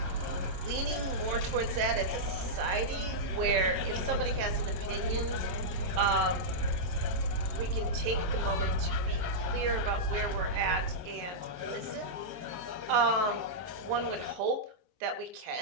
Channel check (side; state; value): left; late; 22 ms